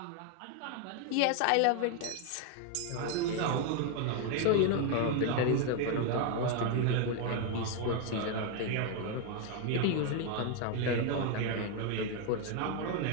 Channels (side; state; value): both; different; correlation 0.01